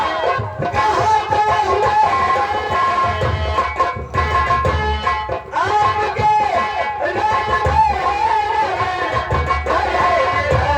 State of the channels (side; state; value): both; identical; correlation 1.00